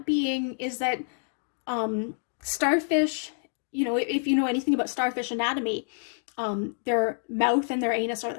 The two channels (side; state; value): right; silent; digital silence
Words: being is that starfish, if you know anything about starfish anatomy, their mouth and their anus are